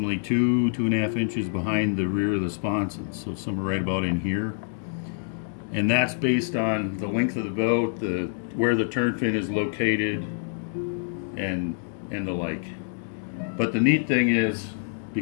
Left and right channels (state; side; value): silent; right; digital silence